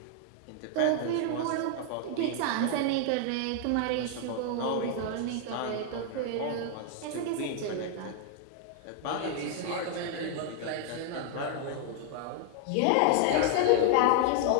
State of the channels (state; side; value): different; both; correlation 0.00